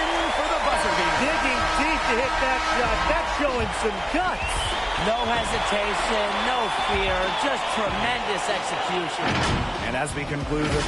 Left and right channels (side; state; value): both; identical; correlation 1.00